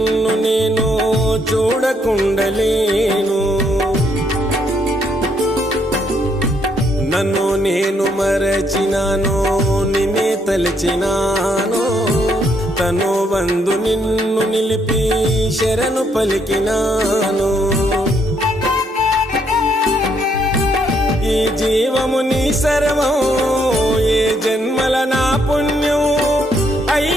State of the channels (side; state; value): both; normal; correlation 0.72